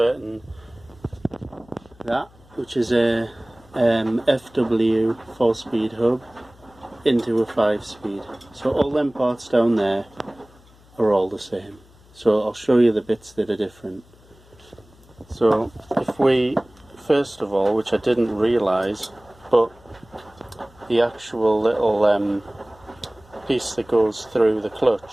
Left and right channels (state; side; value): noise; left; hum, 27 dB below the sound